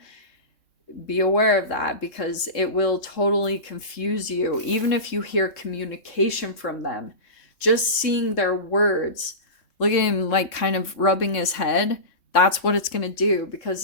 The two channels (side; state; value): right; late; 3.2 ms